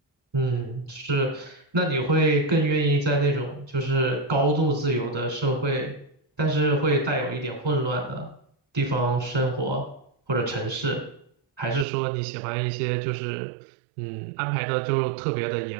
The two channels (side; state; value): left; drops out; at 11.9 s